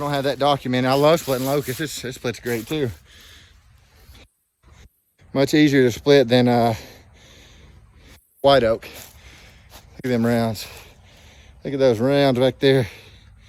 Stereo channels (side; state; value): both; identical; correlation 1.00